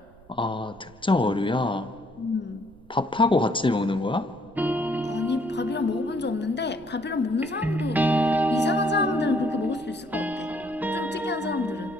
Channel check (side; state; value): right; noise; rumble, 26 dB below the sound